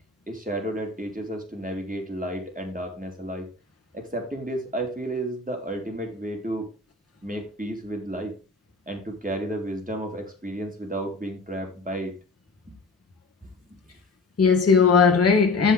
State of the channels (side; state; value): right; quieter; 3.6 dB